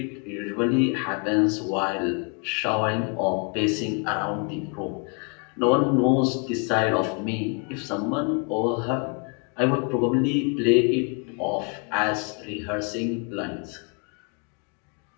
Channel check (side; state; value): right; quieter; 36.7 dB